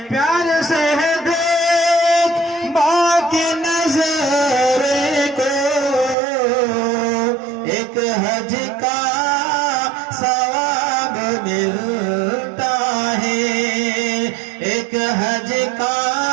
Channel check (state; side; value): drops out; left; at 6.2 s